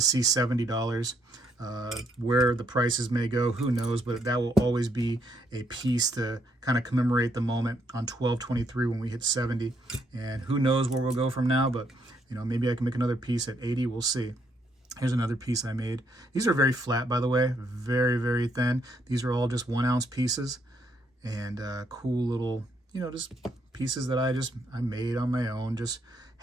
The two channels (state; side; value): normal; both; correlation 0.73